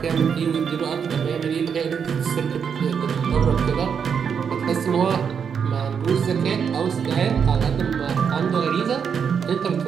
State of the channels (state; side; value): quieter; left; 7.0 dB